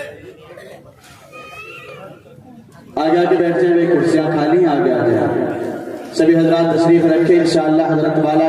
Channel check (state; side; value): identical; both; correlation 1.00